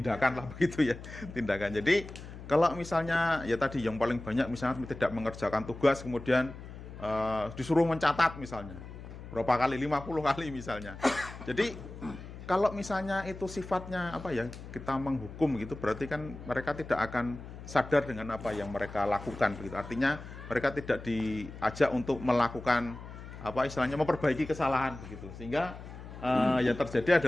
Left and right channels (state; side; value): noise; left; hum, 13 dB below the sound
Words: lah begitu ya, tindakan. Jadi kalau misalnya ya tadi yang paling banyak misalnya tidak mengerjakan tugas kemudian disuruh mencatat misalnya berapa kali, 50 kali misalnya. Jadi kalau misalnya itu sifatnya apa ya, kita menghukum gitu, berarti kan mereka tidak akan sadar dengan apa yang mereka lakukan begitu. Artinya mereka tidak diajak untuk melakukan apa istilahnya memperbaiki kesalahan begitu. Sehingga yang terjadi